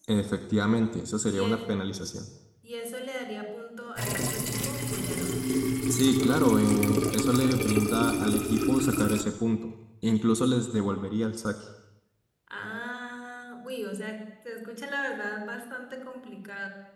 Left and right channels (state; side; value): identical; both; correlation 1.00